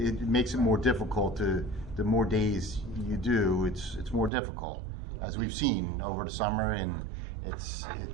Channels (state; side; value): drops out; left; at 4.3 s